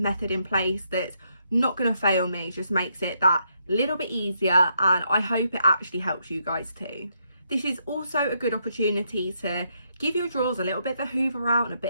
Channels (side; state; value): both; inverted; correlation -0.77